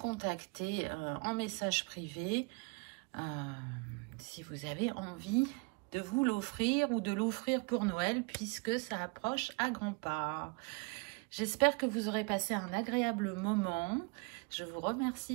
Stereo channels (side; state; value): left; quieter; 31.2 dB